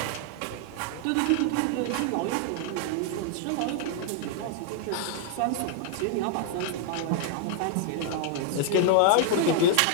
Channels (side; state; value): both; different; correlation 0.00